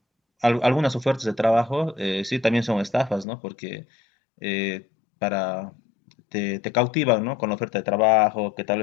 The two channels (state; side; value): drops out; right; at 3.2 s